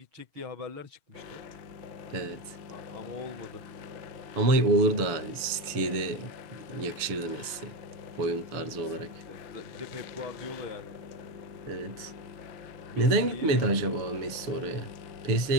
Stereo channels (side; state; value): left; late; 6.9 ms